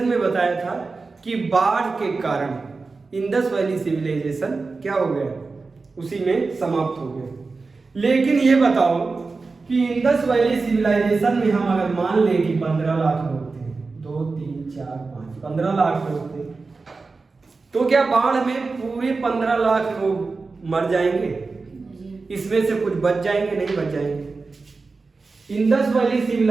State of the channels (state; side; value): quieter; left; 4.0 dB